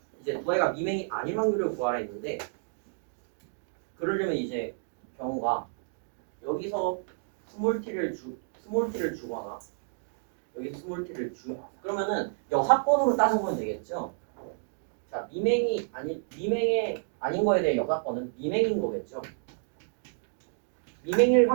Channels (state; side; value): silent; left; digital silence